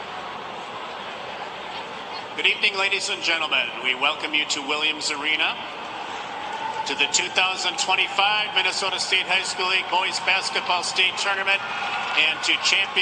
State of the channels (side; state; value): both; identical; correlation 1.00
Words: Good evening, ladies and gentlemen. We welcome you to Williams Arena, to the 2025 Minnesota State High School League Boys Basketball State Tournament, and to